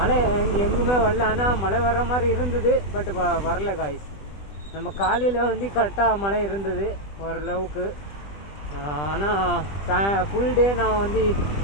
எங்குமே வரல. ஆனால் மழை வர்ற மாதிரி இருந்தது, பட் வரல காய்ஸ். நம்ம காலையில் வந்து கரெக்டாக மழை இருந்தது ஓரளவுக்கு. ஆனால் ஃபுல் டே நான் வந்து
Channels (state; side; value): late; right; 20 ms